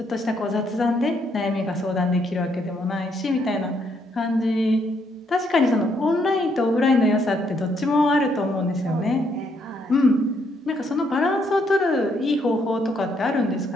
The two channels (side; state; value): both; normal; correlation 0.73